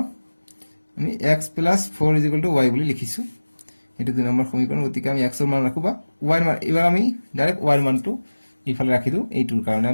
আমি x + 4 = y বুলি লিখিছো এটো 2 নম্বৰ সমীকৰণ গতিকে আমি x ৰ মান ৰাখবা y ৰ মান এবাৰ আমি ডাইৰেক্ট y ৰ মানটো ইফালে ৰাখি দিও এইটোৰ কাৰণে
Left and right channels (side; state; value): both; inverted; correlation -1.00